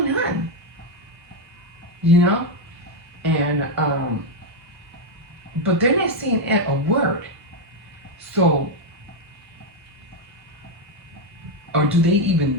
on? You know? And, but they're not saying a word. So, or do they even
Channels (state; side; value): normal; both; correlation 0.04